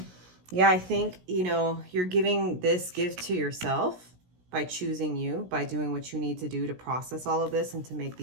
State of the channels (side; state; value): left; late; 17 ms